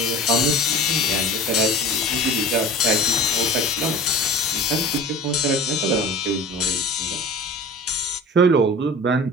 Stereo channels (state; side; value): normal; both; correlation 0.38